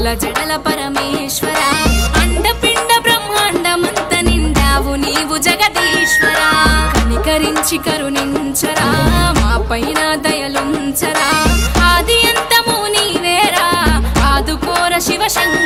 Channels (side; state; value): both; identical; correlation 1.00